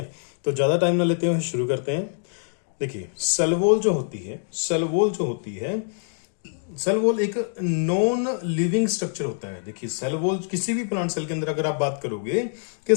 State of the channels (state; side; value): silent; right; digital silence